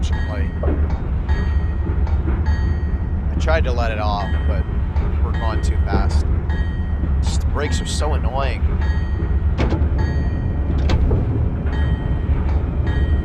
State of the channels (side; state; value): both; identical; correlation 1.00